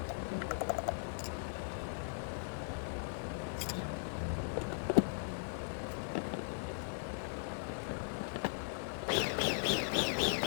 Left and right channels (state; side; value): silent; right; digital silence